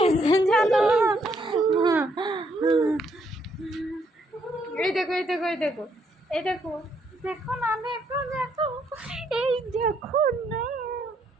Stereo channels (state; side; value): normal; both; correlation 0.72